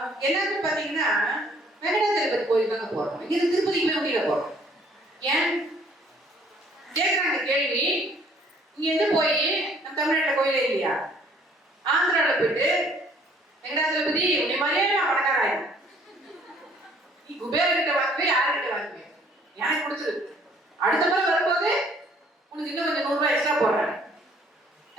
எல்லாருமே பாத்தீங்கன்னா வெங்கடாச்சலபதி கோயில் தாங்க போறோம். இங்க திருப்பதிக்கு போய் முடியல போறோம். ஏன் கேட்குறாங்க கேள்வி. இங்க போய் நம்ம தமிழ்நாட்டில் கோயிலே இல்லையா? ஆந்திராவில் போயிட்டு வெங்கடாச்சலபதி உன்னை மாதிரியே நான் பணக்காராயன், நீ குபேரகிட்ட வாங்குவே யாருக்கிட்ட வாங்குவேன், எனக்கு பிடிச்சது. அடுத்த முறை வரும்போது உனக்கு இன்னும் கொஞ்சம் 100 ரூபாய் எக்ஸ்ட்ரா போடுறேன்.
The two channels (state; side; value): normal; both; correlation 0.60